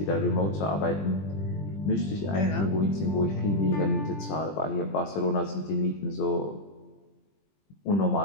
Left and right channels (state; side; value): late; right; 20 ms